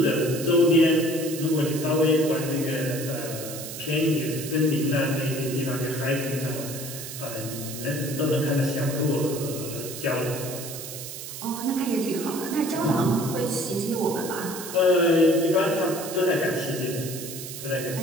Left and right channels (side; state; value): right; noise; hiss, 9 dB below the sound